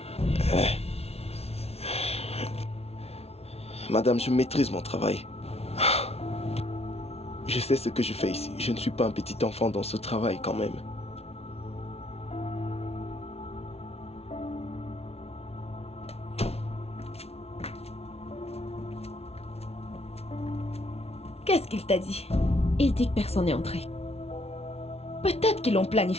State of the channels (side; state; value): right; late; 0.30 ms